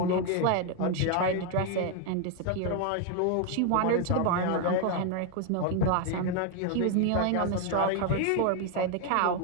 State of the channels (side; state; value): both; different; correlation 0.01